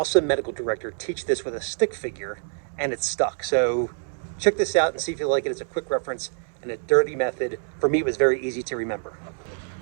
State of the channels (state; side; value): silent; left; 61 dB below the other